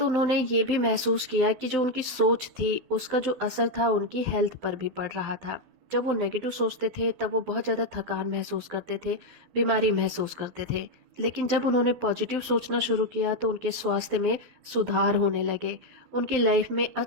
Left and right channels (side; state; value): left; late; 12 ms